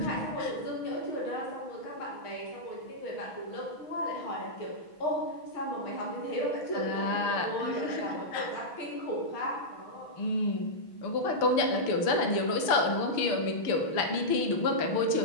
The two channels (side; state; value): right; late; 6.2 ms